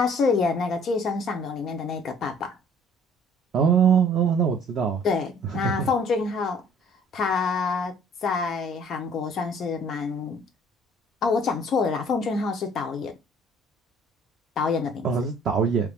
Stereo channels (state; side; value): normal; both; correlation 0.55